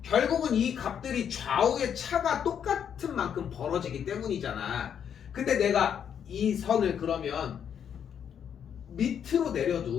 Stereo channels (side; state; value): right; quieter; 8.4 dB